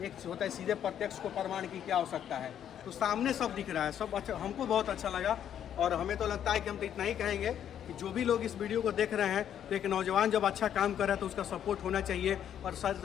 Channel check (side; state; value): right; quieter; 9.7 dB